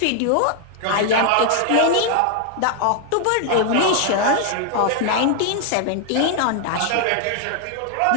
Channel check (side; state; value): both; different; correlation 0.00